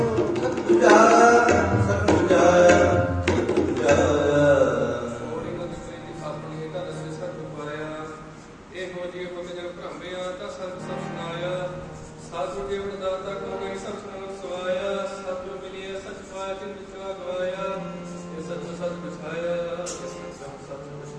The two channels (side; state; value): both; identical; correlation 1.00